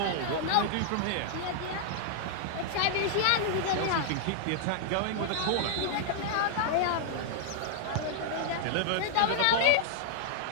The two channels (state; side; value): different; both; correlation -0.01